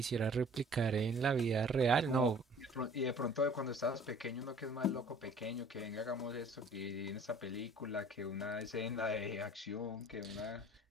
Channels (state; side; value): normal; both; correlation 0.50